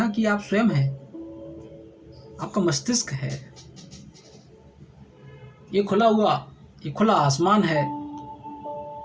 कि आप स्वयं हैं, आपका मस्तिष्क है, ये खुला आसमान है,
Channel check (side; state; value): both; identical; correlation 1.00